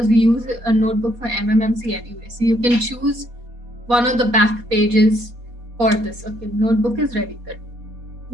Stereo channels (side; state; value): left; late; 4.2 ms